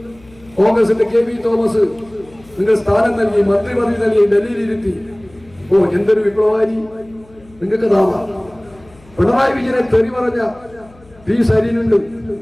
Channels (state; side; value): noise; left; hum, 26 dB below the sound